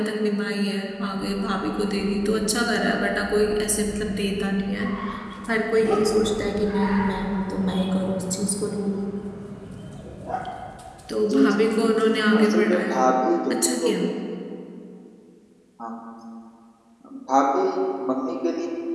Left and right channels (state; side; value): identical; both; correlation 1.00